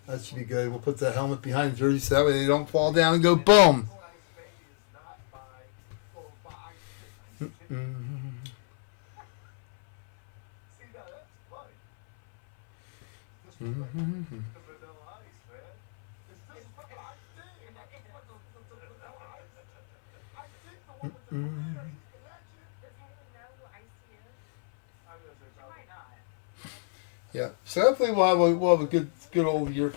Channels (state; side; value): silent; right; 59 dB below the other